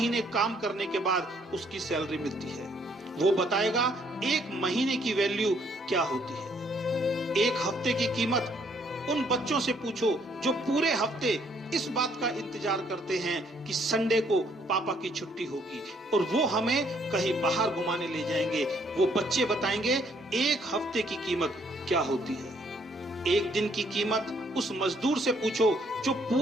काम करने के बाद उसकी सैलरी मिलती है। वो बताएगा 1 महीने की वैल्यू क्या होती है। 1 हफ्ते की कीमत उन बच्चों से पूछो जो पूरे हफ्ते इस बात का इंतजार करते हैं कि संडे को पापा की छुट्टी होगी और वो हमें कहीं बाहर घुमाने ले जाएंगे। वो बच्चे बताएंगे 1 हफ्ते की कीमत क्या होती है। 1 दिन की कीमत उस मजदूर से पूछो जो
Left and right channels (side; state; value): both; normal; correlation 0.67